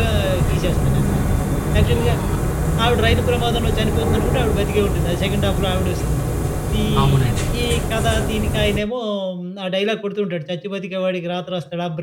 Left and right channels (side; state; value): both; identical; correlation 1.00